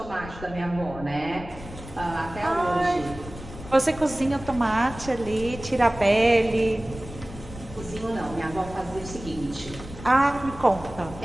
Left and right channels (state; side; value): noise; left; rumble, 14 dB below the sound